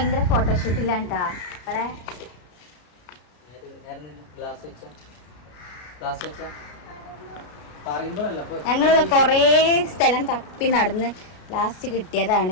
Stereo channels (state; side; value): late; right; 33 ms